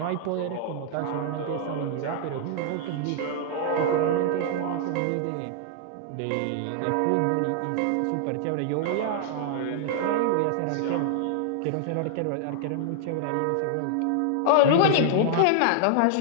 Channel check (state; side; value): different; both; correlation -0.01